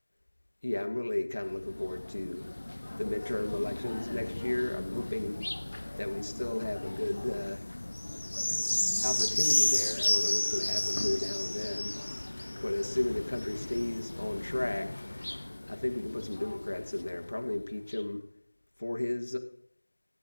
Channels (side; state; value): both; inverted; correlation -1.00